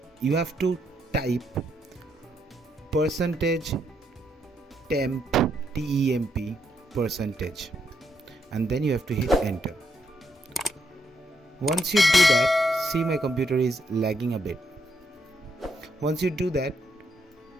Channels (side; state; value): both; normal; correlation 0.77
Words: you have to type %temp %, and then you have to hit enter. Once you do that, see, my computer is lagging a bit. Once you do that,